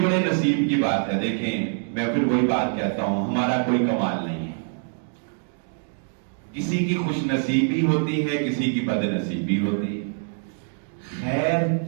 بڑے نصیب کی بات ہے. دیکھیں میں پھر وہی بات کہتا ہوں، ہمارا کوئی کمال نہیں ہے. کسی کی خوش نصیبی ہوتی ہے، کسی کی بد نصیبی ہوتی ہے. خیر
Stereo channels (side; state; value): left; silent; 62 dB below the other